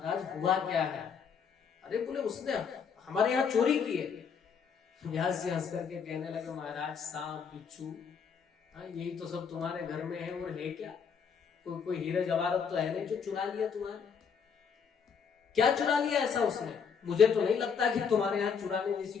हुआ क्या है? अरे बोले उसने हमारे यहाँ चोरी की है। व्यास जी हंस करके कहने लगे, महाराज सांप बिच्छू यही तो सब तुम्हारे घर में है, और है क्या? कोई हीरे जवाहरत तो है नहीं जो चुरा लिया तुम्हारे। क्या चुरा लिया ऐसा उसने? मुझे तो नहीं लगता कि तुम्हारे यहाँ चुराने जैसी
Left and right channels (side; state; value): right; quieter; 6.5 dB